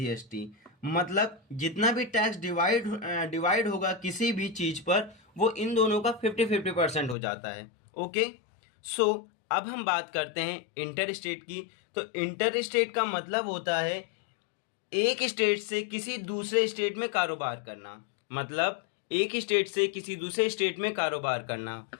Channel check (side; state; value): right; drops out; at 7.2 s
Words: मतलब जितना भी टैक्स डिवाइड होगा किसी भी चीज पर, वो इन दोनों का 50-50% हो जाता है। ओके, सो अब हम बात करते हैं इंटर स्टेट की। तो इंटर स्टेट का मतलब होता है एक स्टेट से किसी दूसरे स्टेट में कारोबार करना। मतलब एक स्टेट से किसी दूसरे स्टेट में कारोबार करना।